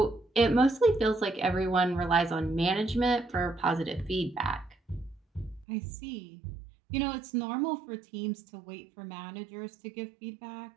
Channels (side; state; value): left; drops out; at 5.7 s